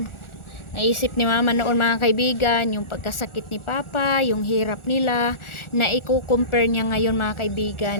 Naisip ni Mama noon mga kaibigan, yung pagkasakit ni Papa, yung hirap nila, na i-compare niya ngayon mga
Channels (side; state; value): right; late; 1.4 ms